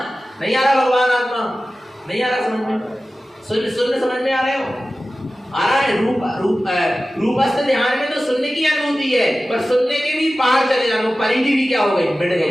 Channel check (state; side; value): normal; both; correlation 0.95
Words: नहीं आ रहा भगवान आत्मा, नहीं आ रहा समझ में, शून्य शून्य समझ में आ रहे हो, आ रहा है। रूपस्थ ध्यान में तो शून्य की अनुभूति है, पर शून्य के भी पार चले जाना, परिधि भी क्या हो गई, मिट